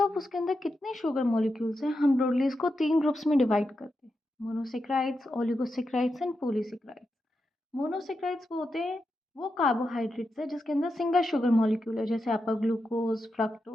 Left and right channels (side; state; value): both; normal; correlation 0.87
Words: उसके अंदर कितने sugar molecules हैं हम broadly इसको तीन ग्रुप्स में डिवाइड करते हैं, monosaccharides, oligosaccharides and polysaccharides. Monosaccharides वो होते हैं वो कार्बोहाइड्रेट्स है जिसके अंदर सिंगल शुगर मॉलिक्यूल है, जैसे आपका ग्लूकोज,